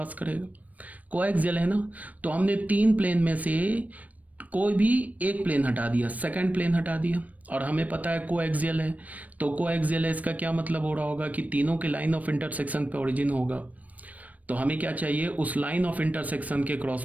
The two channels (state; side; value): late; left; 0.072 ms